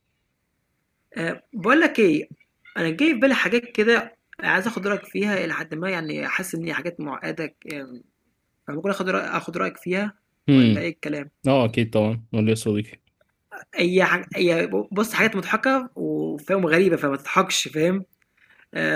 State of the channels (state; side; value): identical; both; correlation 1.00